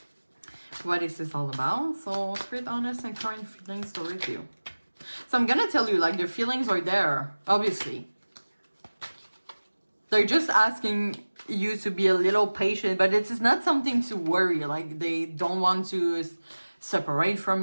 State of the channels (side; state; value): both; inverted; correlation -1.00